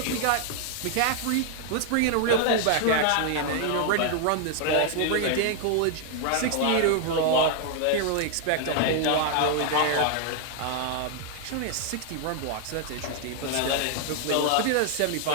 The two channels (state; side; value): different; both; correlation 0.00